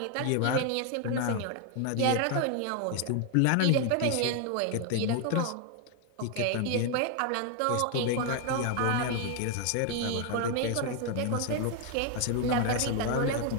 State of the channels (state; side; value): different; both; correlation 0.01